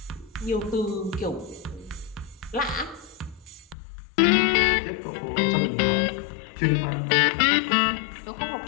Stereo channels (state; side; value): drops out; right; at 3.8 s